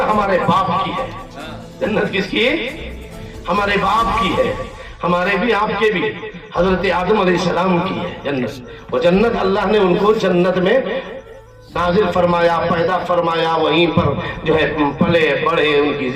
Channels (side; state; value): both; identical; correlation 1.00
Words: ہمارے باپ کی ہے، جنت کس کی؟ ہمارے باپ کی ہے، ہمارے بھی آپ کے بھی، حضرت آدم علیہ السلام کی ہے جنت۔ وہ جنت اللہ نے ان کو جنت میں نازل فرمایا، پیدا فرمایا، وہیں پر جو ہے پلے بڑھے، ان کی